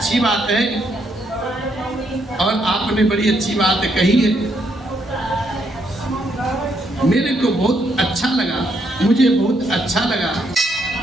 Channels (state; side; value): normal; both; correlation 0.75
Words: बात है और आपने बड़ी अच्छी बात कही है। मेरे को बहुत अच्छा लगा, मुझे बहुत अच्छा लगा,